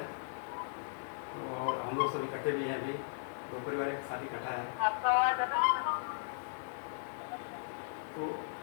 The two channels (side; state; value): right; silent; digital silence